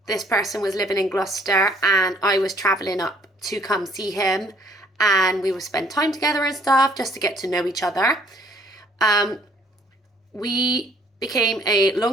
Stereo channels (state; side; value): normal; both; correlation 0.61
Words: this person was living in Gloucester and I was traveling up to come see him, and we would spend time together and stuff just to get to know each other. We became a